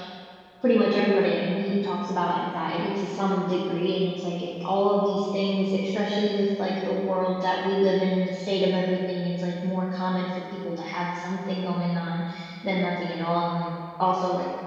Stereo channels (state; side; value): identical; both; correlation 1.00